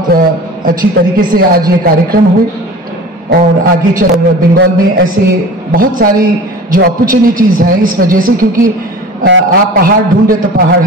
अच्छी तरीके से आज ये कार्यक्रम हुए और आगे चल बंगाल में ऐसे बहुत सारी जो अपॉर्चुनिटीज हैं इस वजह से, क्योंकि आप पहाड़ ढूंढे तो पहाड़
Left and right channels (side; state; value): both; normal; correlation 0.38